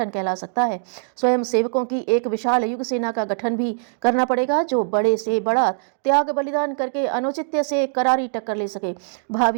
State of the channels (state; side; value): silent; left; digital silence